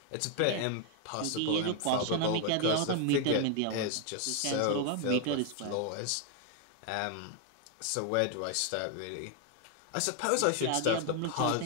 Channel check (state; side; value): different; both; correlation 0.00